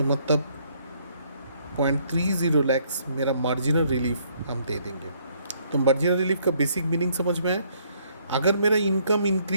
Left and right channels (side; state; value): both; inverted; correlation -0.67